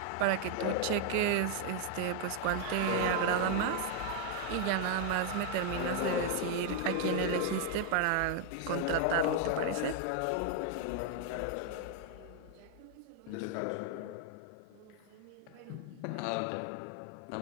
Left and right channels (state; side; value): different; both; correlation 0.00